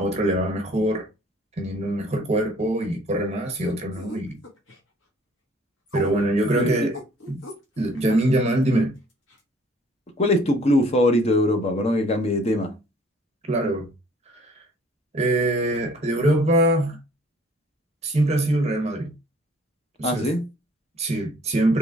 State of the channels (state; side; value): normal; both; correlation 0.57